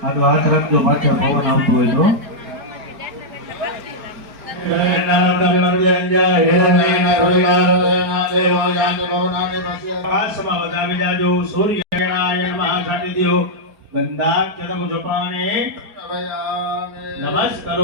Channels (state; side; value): late; left; 4.6 ms